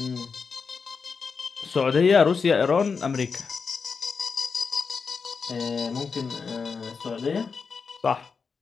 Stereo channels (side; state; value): right; quieter; 5.3 dB